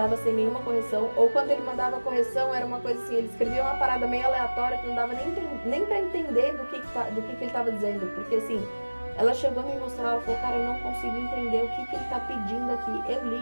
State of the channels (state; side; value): inverted; both; correlation -1.00